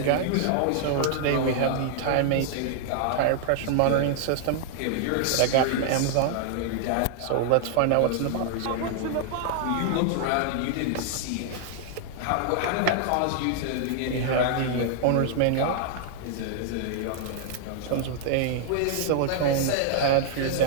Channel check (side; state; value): both; different; correlation 0.00